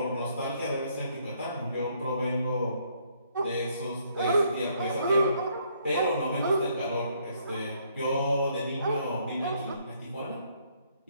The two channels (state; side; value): inverted; both; correlation -0.69